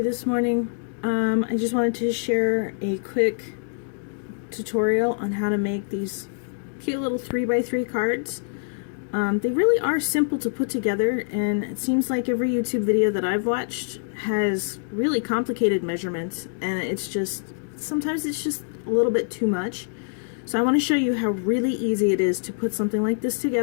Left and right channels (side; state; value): right; silent; digital silence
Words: this morning. I just wanted to share a quick tutorial on how to make these cute little 3x3 cards. They really are simple to put together, and it seems like every YouTube video that I've watched has really complicated measurements, and it's just, sometimes it's just a little bit too much. So I want to show you how really easy it is to put something like this